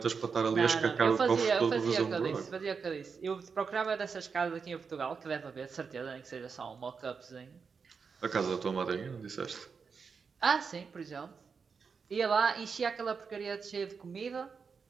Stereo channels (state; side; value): quieter; left; 5.5 dB